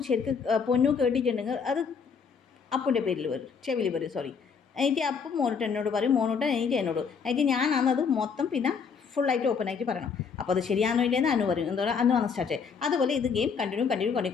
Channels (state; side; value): quieter; right; 6.0 dB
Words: ശരിക്കും പൊന്നു കേട്ടിട്ടുണ്ടെങ്കിൽ അത് അപ്പുൻ്റെ പേരിൽ വരും, ചെവിയിൽ വരും, സോറി. എനിക്ക് അപ്പം മോനോട്ട് എന്നോട് പറയും, മോനോട്ട് എനിക്ക് എന്നോട്. എനിക്ക് ഞാനാണത് മൊത്തം പിന്നെ ഫുള്ളായിട്ട് ഓപ്പൺ ആയിട്ട് പറയണം. അപ്പോൾ അത് ശരിയാണോ ഇല്ലെന്ന് അനു പറയും. എന്താ പറയുക, അനു ആണ് സ്റ്റാർട്ട്. അതുപോലെ ഇത് ഗെയിം